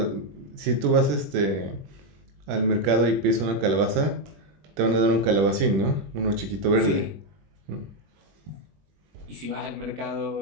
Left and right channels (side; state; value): left; late; 21 ms